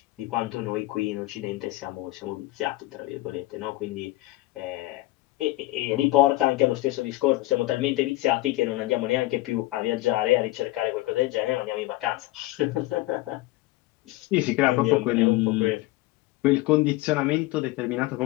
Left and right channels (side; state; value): right; quieter; 18.5 dB